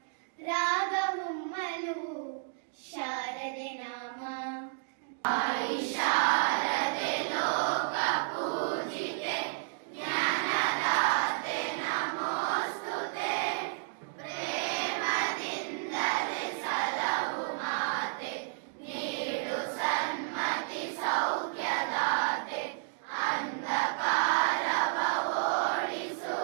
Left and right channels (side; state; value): left; silent; digital silence